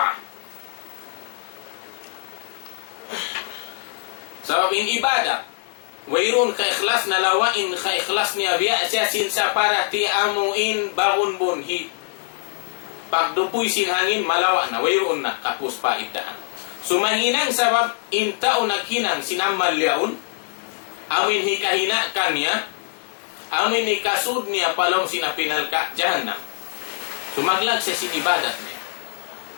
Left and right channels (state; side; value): silent; right; 63 dB below the other